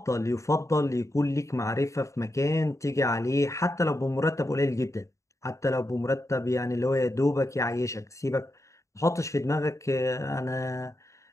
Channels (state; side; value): late; right; 0.15 ms